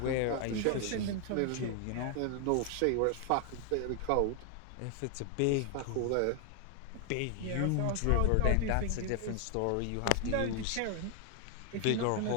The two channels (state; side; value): different; both; correlation 0.00